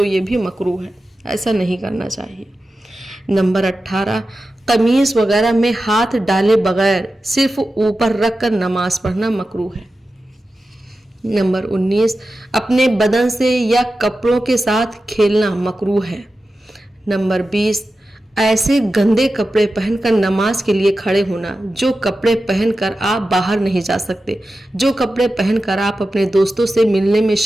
ये भी मकरूह है, ऐसा नहीं करना चाहिए। नंबर 18, कमीज़ वगैरह में हाथ डाले बगैर सिर्फ ऊपर रख कर नमाज पढ़ना मकरूह है। नंबर 19, अपने बदन से या कपड़ों के साथ खेलना मकरूह है। नंबर 20, ऐसे गंदे कपड़े पहनकर नमाज के लिए खड़े होना जो कपड़े पहनकर आप बाहर नहीं जा सकते, जो कपड़े पहनकर आप अपने दोस्तों से मिलने में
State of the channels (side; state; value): both; normal; correlation 0.93